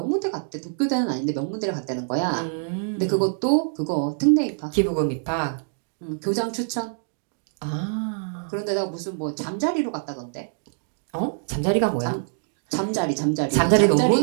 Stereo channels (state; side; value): silent; left; digital silence